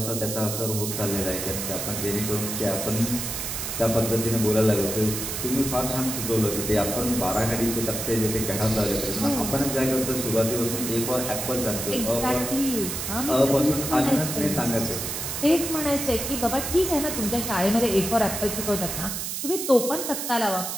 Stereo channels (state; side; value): noise; right; hiss, 4 dB below the sound